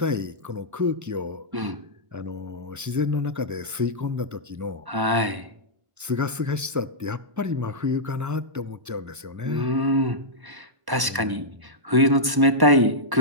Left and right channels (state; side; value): late; left; 1.0 ms